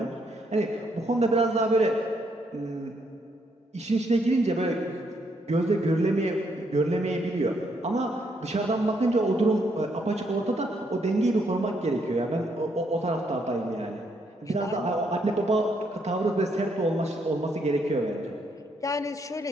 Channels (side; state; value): both; normal; correlation 0.74